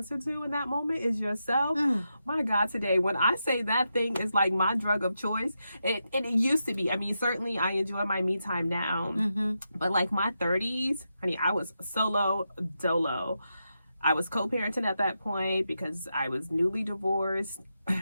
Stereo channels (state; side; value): inverted; both; correlation -0.86